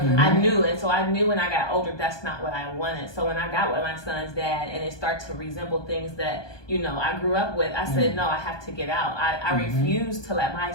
knew. And so I knew when I got older, that's not what I wanted. So when I got with my son's dad and it started to resemble things that, you know, I grew up with, I said, no, I have to get out. I refuse to let my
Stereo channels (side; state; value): right; late; 1.2 ms